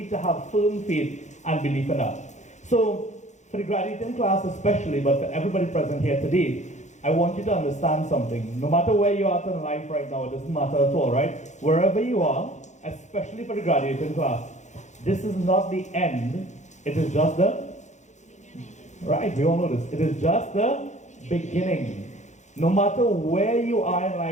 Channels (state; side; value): late; right; 0.34 ms